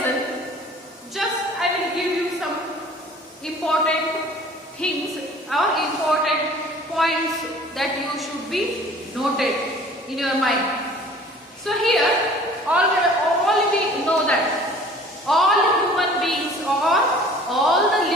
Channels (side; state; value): both; normal; correlation 0.49